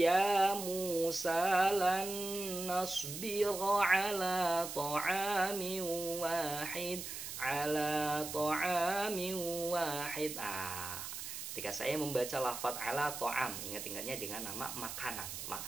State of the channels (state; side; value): noise; right; hiss, 7 dB below the sound